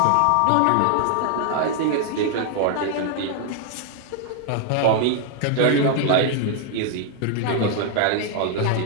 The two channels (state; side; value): different; both; correlation 0.00